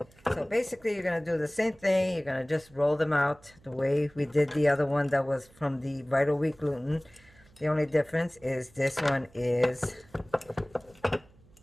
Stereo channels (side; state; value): right; noise; hum, 28 dB below the sound